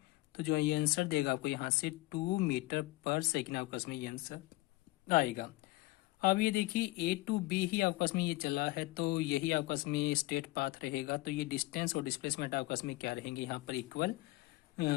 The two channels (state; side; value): quieter; right; 20.2 dB